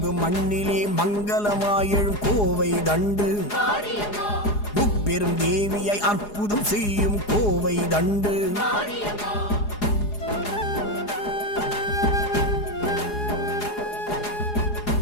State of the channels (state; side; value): late; right; 4.8 ms